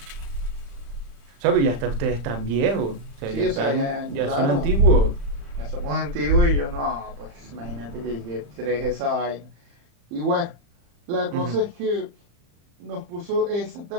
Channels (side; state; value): left; late; 35 ms